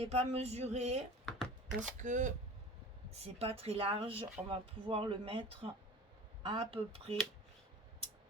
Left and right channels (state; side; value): normal; both; correlation 0.39